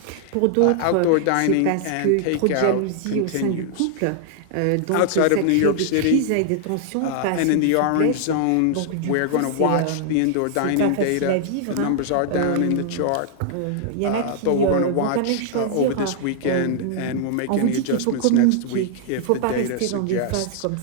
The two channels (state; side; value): different; both; correlation 0.00